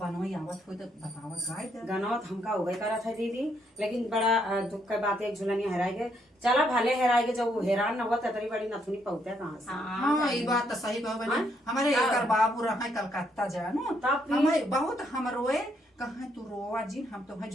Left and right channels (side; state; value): both; normal; correlation 0.73